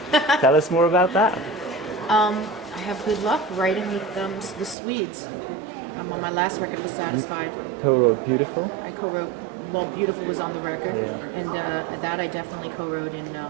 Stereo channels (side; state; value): left; drops out; at 4.8 s